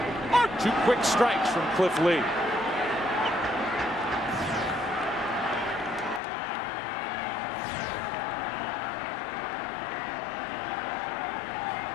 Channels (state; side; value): drops out; right; at 6.2 s